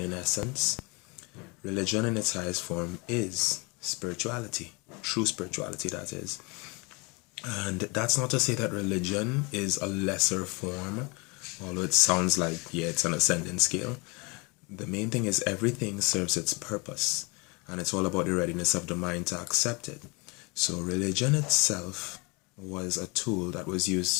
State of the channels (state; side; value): quieter; right; 29.0 dB